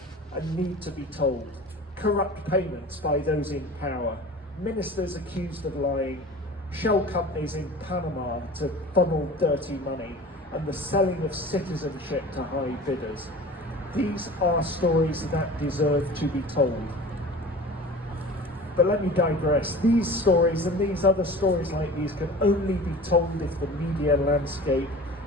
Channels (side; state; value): both; normal; correlation 0.39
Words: and need to be told. Corrupt payments by those in power, ministers accused of lying, shell companies in Panama to funnel dirty money, and the selling of citizenship to high bidders. These are stories that deserve to be told. But let me digress. These stories and these other stories like these can only be told if the media landscape